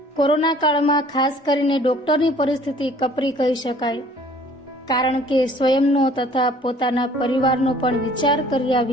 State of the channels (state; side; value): normal; both; correlation 0.53